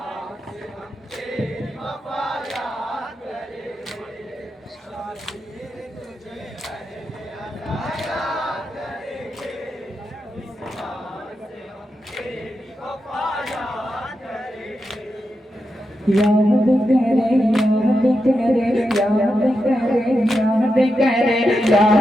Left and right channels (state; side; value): normal; both; correlation 0.87